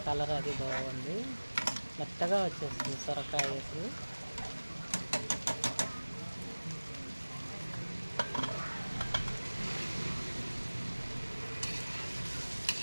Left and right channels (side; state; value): both; inverted; correlation -1.00